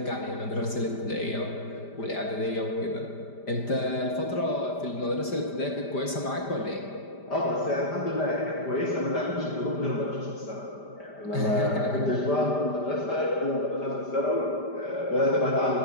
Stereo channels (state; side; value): late; right; 5.0 ms